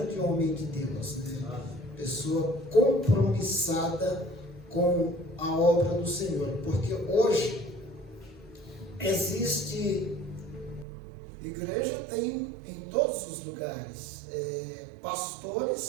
homem de Deus, né? Pessoa compromissada com a obra do Senhor, porque hoje existe igreja, tem em todos os lugares,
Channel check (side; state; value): left; drops out; at 10.9 s